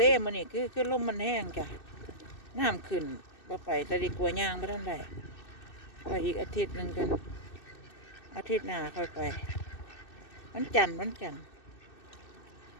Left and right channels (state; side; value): late; right; 2.6 ms